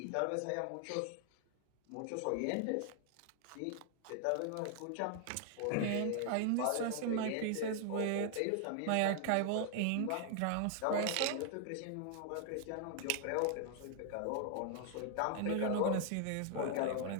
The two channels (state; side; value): different; both; correlation 0.00